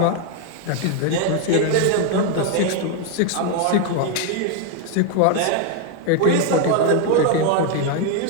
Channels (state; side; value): different; both; correlation 0.01